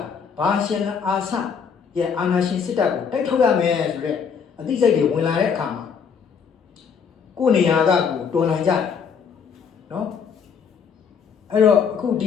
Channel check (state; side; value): quieter; right; 6.5 dB